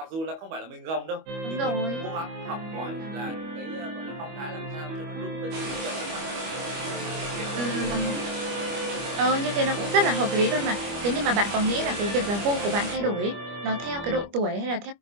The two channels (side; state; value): left; late; 25 ms